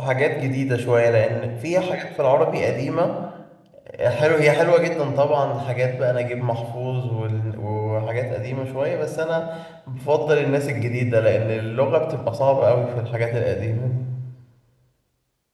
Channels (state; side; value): identical; both; correlation 1.00